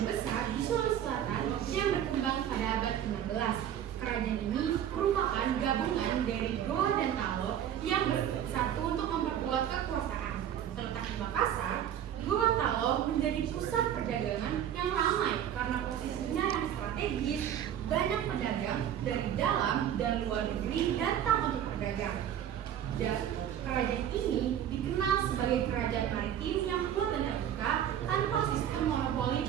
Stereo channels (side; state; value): left; quieter; 10.2 dB